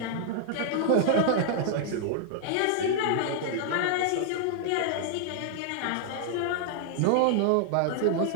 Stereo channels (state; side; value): different; both; correlation 0.00